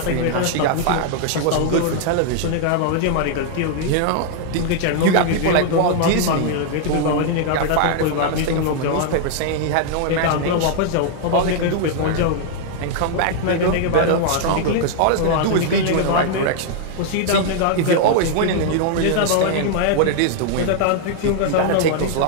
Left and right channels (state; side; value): different; both; correlation 0.00